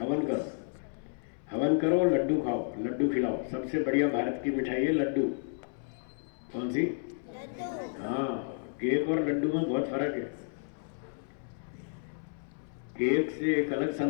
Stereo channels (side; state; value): right; silent; 57 dB below the other